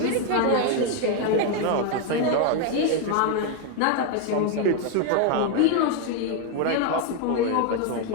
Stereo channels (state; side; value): different; both; correlation 0.01